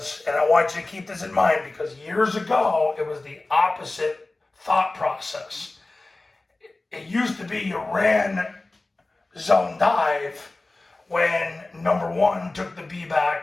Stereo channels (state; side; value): quieter; right; 3.0 dB